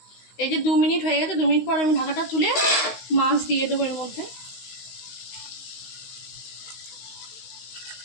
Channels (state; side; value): late; right; 16 ms